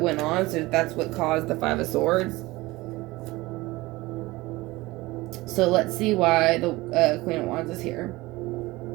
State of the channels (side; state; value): left; quieter; 20.4 dB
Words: on, so that's what caused the Five of Swords. So let's see why the Queen of Wands is here.